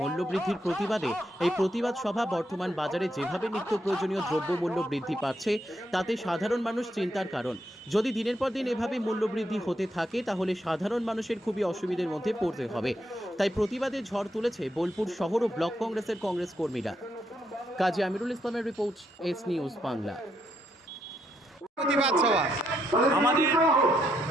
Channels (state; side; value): normal; both; correlation 0.78